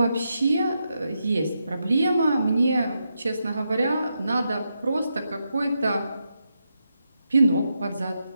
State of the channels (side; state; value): both; inverted; correlation -0.85